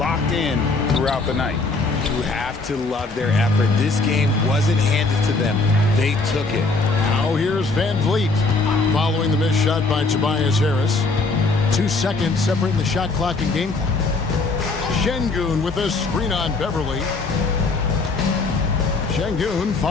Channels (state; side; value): quieter; right; 3.7 dB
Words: in throughout the night. You have to love their effort. This game wasn't handed to them. They took it. Now here's Van Vliet following the missed shot by Tobias Harris. 2 seconds separating the shot clock and game clock. Şengün with a screen on Beverly. Şengün